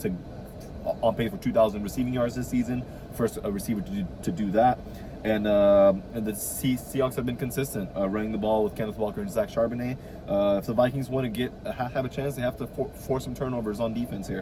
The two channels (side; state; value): both; identical; correlation 1.00